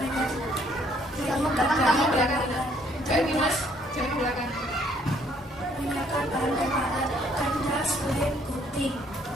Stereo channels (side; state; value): both; normal; correlation 0.65